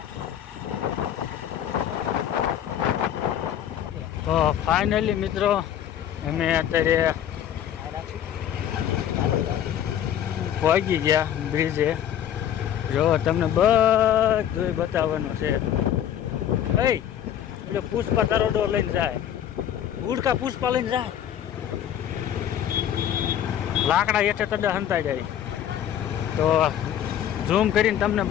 તો ફાઇનલી મિત્રો અમે અત્યારે પહોંચી ગયા બ્રિજે. જો તમને બધું બતાવવાનું છે. એટલે પુષ્પા તરોડો લઈને જાય, ઉડકા પુષ્પા લઈને જાય, લાકડા હેઠે તડા હંતાઈ જાય. તો ઝૂમ કરીને તમને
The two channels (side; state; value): right; quieter; 10.2 dB